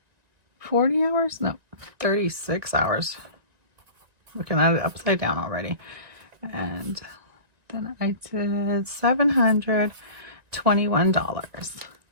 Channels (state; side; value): late; left; 1.9 ms